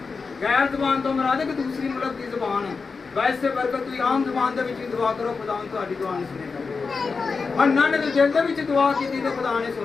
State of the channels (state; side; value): quieter; right; 4.7 dB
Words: ਗੈਰ ਜ਼ਬਾਨ ਤੋਂ ਮੁਰਾਦ ਹੈ ਕਿ ਦੂਸਰੀ ਮੁਲਕ ਦੀ ਜ਼ਬਾਨ ਹੈ। ਵੈਸੇ ਬਰਕਤ ਤੁਸੀਂ ਆਮ ਜ਼ਬਾਨ ਦੇ ਵਿੱਚ ਵੀ ਦੁਆ ਕਰੋ, ਖੁਦਾ ਤੁਹਾਡੀ ਦੁਆ ਨਹੀਂ ਸੁਣੇਗਾ। ਹੰਨਾ ਨੇ ਤਾਂ ਦਿਲ ਦੇ ਵਿੱਚ ਦੁਆ ਕੀਤੀ ਤੇ ਖੁਦਾ ਨੇ